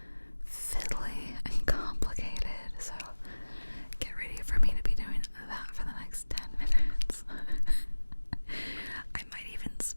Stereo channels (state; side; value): inverted; both; correlation -1.00